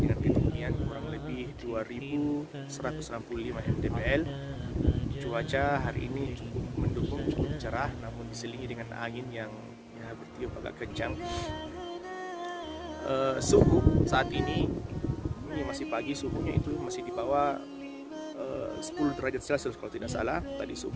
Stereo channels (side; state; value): both; identical; correlation 1.00